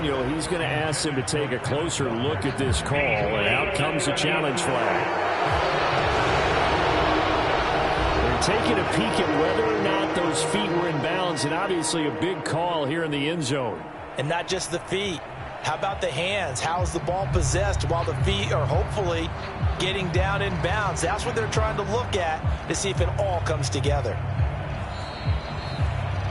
he's going to ask him to take a closer look at this call, and out comes the challenge flag. They're taking a peek at whether or not those feet were in bounds, and obviously a big call here in the end zone. And not just the feet. How about the hands? How is the ball possessed while the feet are hopefully getting down in bounds? That's what they're trying to look at to see if it all comes together.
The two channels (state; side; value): identical; both; correlation 1.00